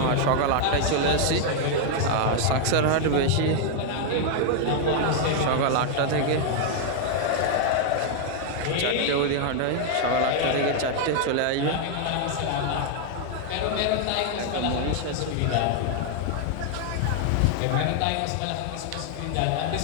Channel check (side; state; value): both; different; correlation 0.00